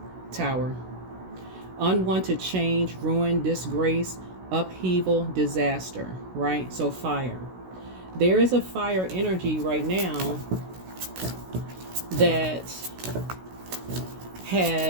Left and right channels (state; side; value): late; left; 16 ms